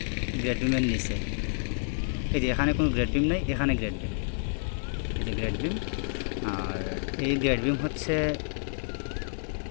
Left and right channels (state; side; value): silent; right; digital silence